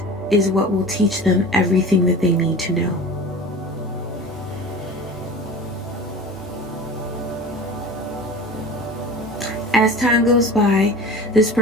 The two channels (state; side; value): normal; both; correlation 0.37